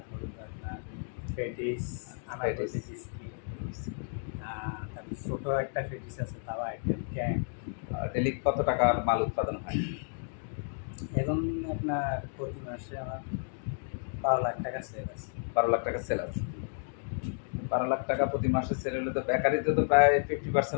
আপনার পেটিস, আনারকলি বিস্কিট, তারপর ছোটো একটা পেটিস আছে, তাও আইটেম ক্যাং। ডেলি কত টাকার মাল উৎপাদন হয়? এখন আপনার প্রতি মাসে আমার 12 লাখ টাকা সেল আছে। 12 লাখ টাকা সেল আছে। 12 লাখ টাকা প্রতি মাসে সেল হলে তো বেকারিতে তো প্রায়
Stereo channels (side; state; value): right; silent; digital silence